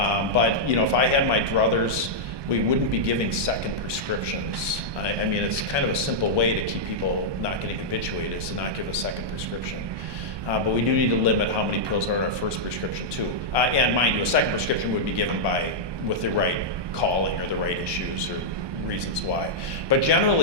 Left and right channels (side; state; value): left; late; 1.2 ms